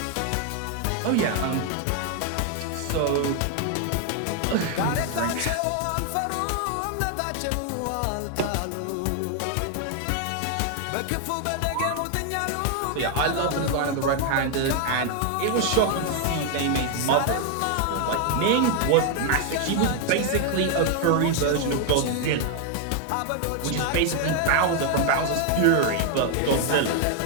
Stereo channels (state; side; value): different; both; correlation 0.01